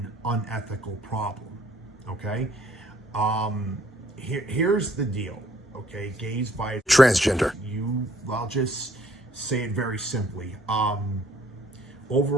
unethical problem, okay? Here's the deal, okay? Gays, bi, transgender. I'll just say it very simply.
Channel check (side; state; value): both; normal; correlation 0.62